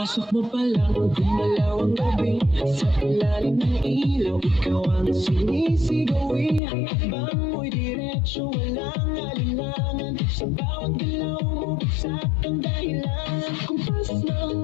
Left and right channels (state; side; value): drops out; right; at 6.6 s